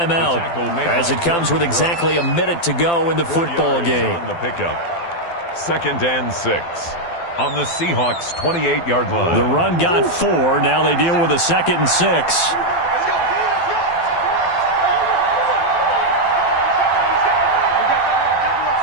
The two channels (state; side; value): late; right; 12 ms